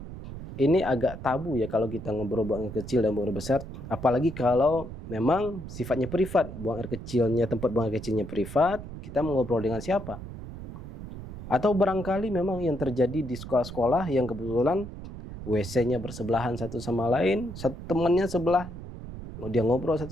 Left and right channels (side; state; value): right; noise; rumble, 11 dB below the sound